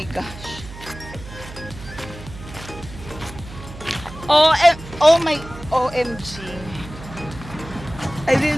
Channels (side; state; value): right; noise; hum, 14 dB below the sound